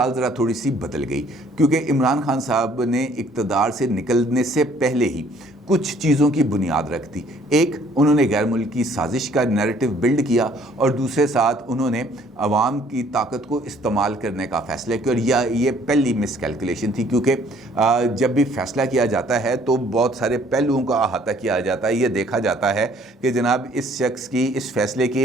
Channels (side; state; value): both; normal; correlation 0.60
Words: ذرا تھوڑی سی بدل گئی، کیونکہ عمران خان صاحب نے اقتدار سے نکلنے سے پہلے ہی کچھ چیزوں کی بنیاد رکھ دی۔ ایک، انہوں نے غیر ملکی سازش کا نیریٹو بلڈ کیا، اور دوسرے ساتھ انہوں نے عوام کی طاقت کو استعمال کرنے کا فیصلہ کیا، اور یہ پہلی مس کیلکولیشن تھی، کیونکہ جب بھی فیصلہ کیا جاتا ہے تو بہت سارے پہلوؤں کا احاطہ کیا جاتا ہے، یہ دیکھا جاتا ہے کہ جناب اس شخص کی اس فیصلے